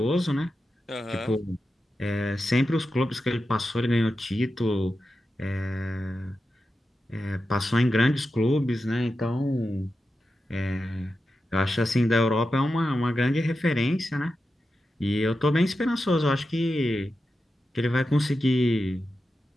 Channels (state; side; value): normal; both; correlation 0.90